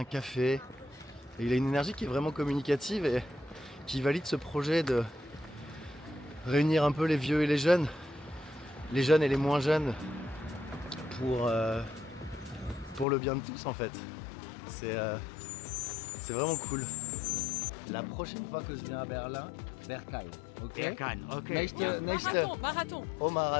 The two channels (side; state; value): right; drops out; at 13.1 s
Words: café. Et il a une énergie qui est vraiment communicative et qui valide ce projet de réunir un peu les vieux et les jeunes et les moins jeunes pour le bien de tous en fait. C'est vraiment cool. La prochaine fois que je viens à Berlin, Berghain, ok? Berghain, ok. Nächste. Marathon. Oh,